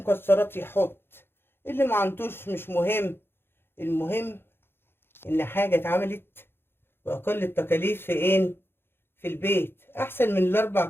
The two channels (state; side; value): late; right; 0.11 ms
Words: يحط، اللي ما عندوش مش مهم. المهم ان حاجه اتعملت باقل التكاليف في ايه؟ في البيت، احسن من الاربع